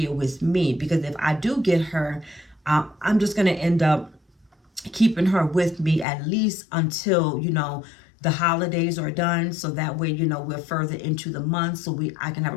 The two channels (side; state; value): right; drops out; at 6.1 s